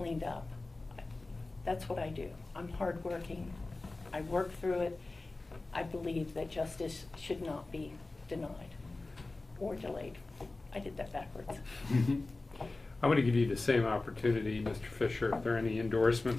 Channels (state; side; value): quieter; right; 3.2 dB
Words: up. That's what I do. I'm hardworking. I work through it. I believe that justice should not be denied or delayed. I did that backwards. I'm going to give you the same opportunity, Mr. Fisher. If there are any